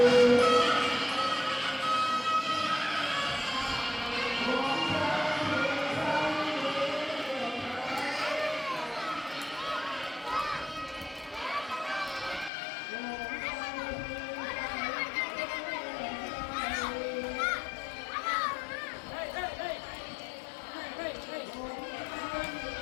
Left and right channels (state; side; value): drops out; right; at 12.5 s